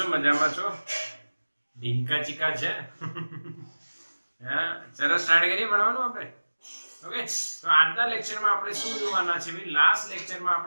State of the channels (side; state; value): both; inverted; correlation -1.00